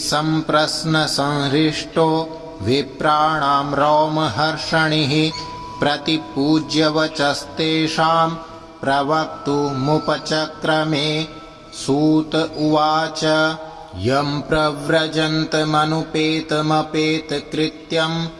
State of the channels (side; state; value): both; identical; correlation 1.00